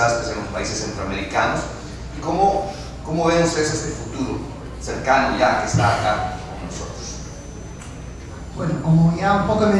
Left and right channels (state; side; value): identical; both; correlation 1.00